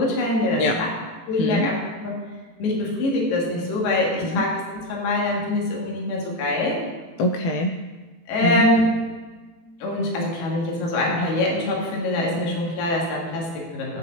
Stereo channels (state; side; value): late; right; 18 ms